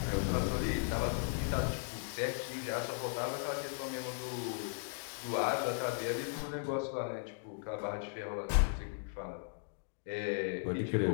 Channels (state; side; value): silent; right; digital silence